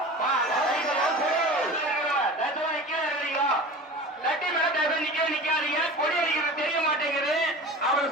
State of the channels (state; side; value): normal; both; correlation 0.35